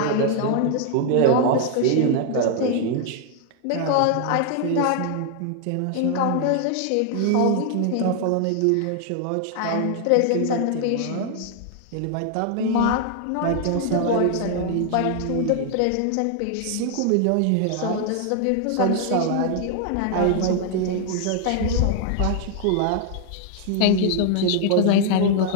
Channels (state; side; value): different; both; correlation 0.00